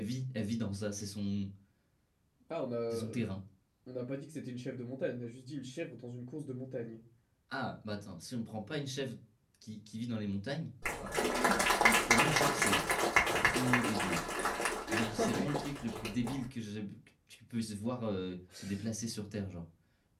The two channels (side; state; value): both; identical; correlation 1.00